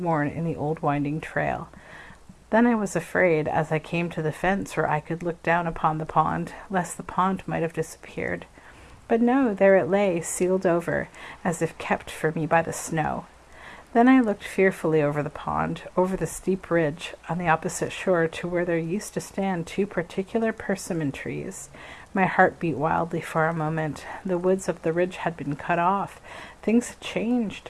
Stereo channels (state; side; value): identical; both; correlation 1.00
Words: in the old winding trail. Then I was afraid, as I came to the fence where I could look down upon the pond, lest the pond might have disappeared. But no, there it lay, sealed over, as if kept for me by the snow. Then I looked fearfully over the pond, over the steep ridge on the opposite shore to where there used to stand 2 particular persimmon trees. My heart beat wildly for a moment. The woods of the ridge had been cut off. Things had changed.